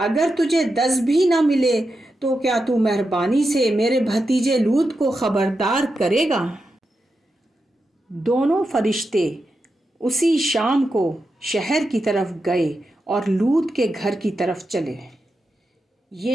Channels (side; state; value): both; normal; correlation 0.88